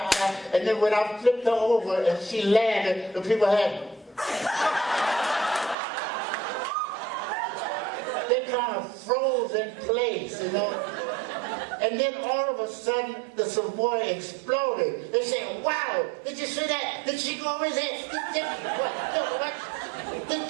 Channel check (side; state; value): left; drops out; at 5.8 s